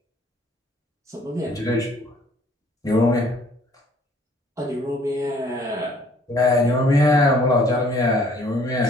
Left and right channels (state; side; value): normal; both; correlation 0.59